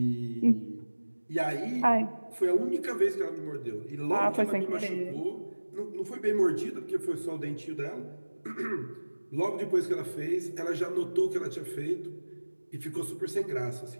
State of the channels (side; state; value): both; inverted; correlation -1.00